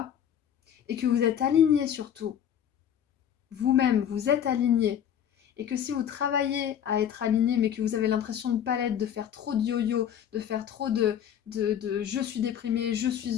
Et que vous êtes aligné surtout. Vous-même, vous êtes aligné. Et que si vous travaillez à être aligné, mais que vous avez l'impression de ne pas l'être, de faire trop de yo-yo, de faire trop de je suis déprimé, je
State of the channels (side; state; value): right; quieter; 9.4 dB